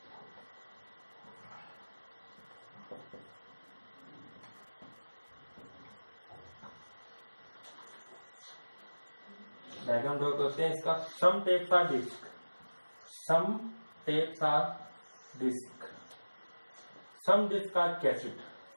Diagram draw करते हैं इसका। Some tapes are disc, some tapes are disc, some disc are cassette,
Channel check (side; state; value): both; inverted; correlation -1.00